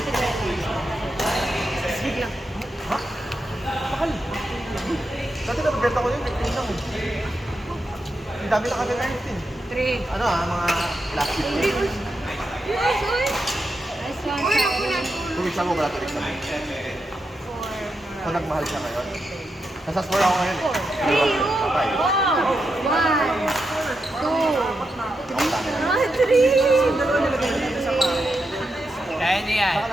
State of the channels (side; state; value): both; normal; correlation 0.86